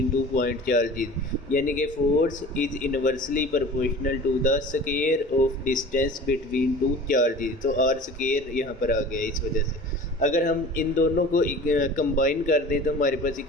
two point charges, यानी कि force is inversely proportional to the square of distance between two charges. तो आर स्क्वायर यहाँ पर आ गया इस वजह से। अगर हम इन दोनों को कंबाइन कर दें तो हमारे पास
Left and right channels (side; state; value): both; normal; correlation 0.41